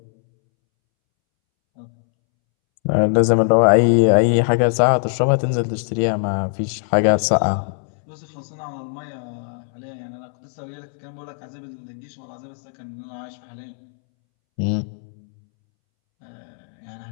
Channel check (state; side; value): silent; right; 65 dB below the other